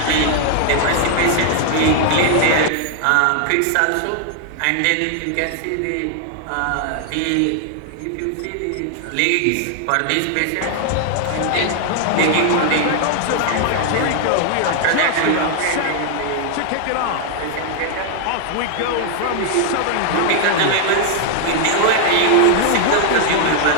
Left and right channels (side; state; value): both; different; correlation 0.00